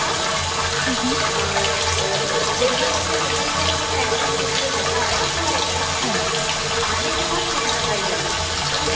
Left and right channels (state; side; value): identical; both; correlation 1.00